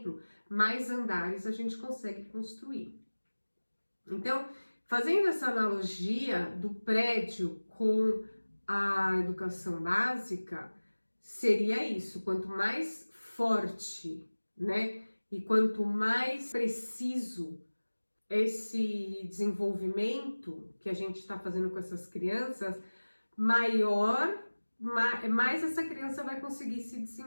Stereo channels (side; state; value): both; inverted; correlation -1.00